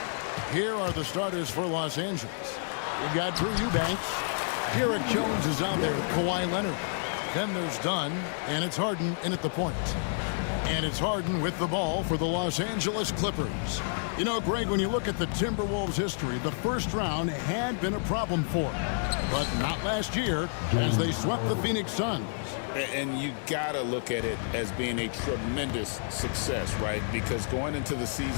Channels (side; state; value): right; silent; digital silence